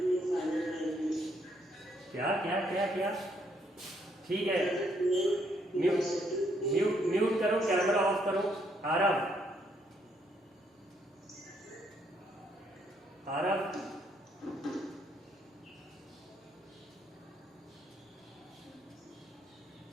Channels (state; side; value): normal; both; correlation 0.72